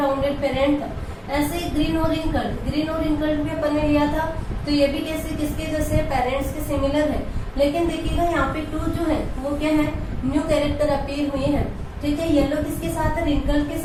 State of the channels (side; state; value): both; identical; correlation 1.00